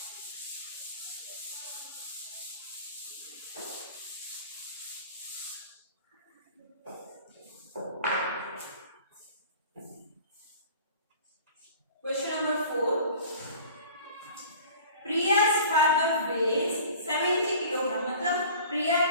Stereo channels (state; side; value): inverted; both; correlation -0.45